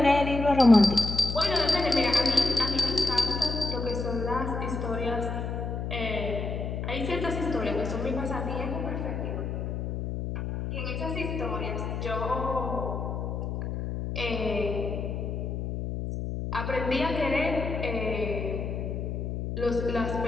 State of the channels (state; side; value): noise; left; hum, 3 dB below the sound